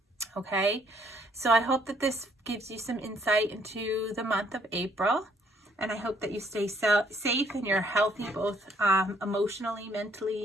okay? So I hope that this gives you some insight into the month of April. And I hope that you stay safe and you're healthy, both emotionally,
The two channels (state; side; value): normal; both; correlation 0.66